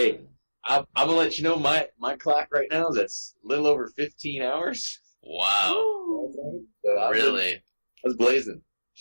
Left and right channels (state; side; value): inverted; both; correlation -1.00